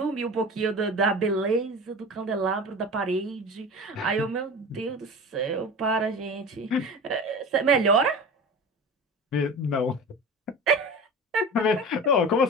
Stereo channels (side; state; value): both; normal; correlation 0.33